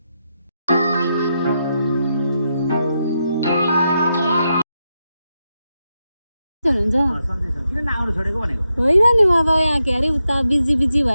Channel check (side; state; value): both; inverted; correlation -0.85